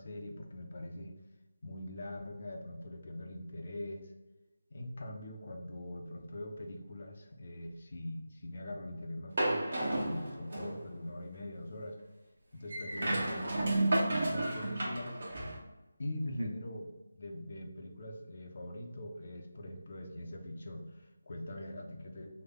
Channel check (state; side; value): inverted; both; correlation -0.92